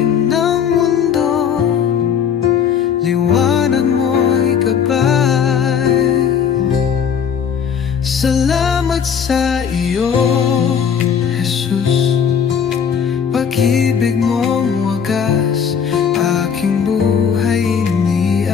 ng mundo, liwanag mo'y gabay. Salamat sa iyo, Jesus. Pag-ibig mong wagas, aking buhay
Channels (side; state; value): right; quieter; 7.5 dB